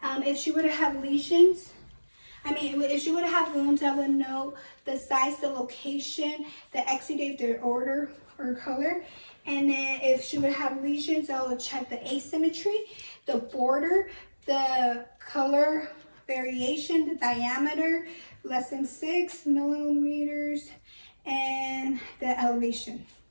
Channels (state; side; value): inverted; both; correlation -1.00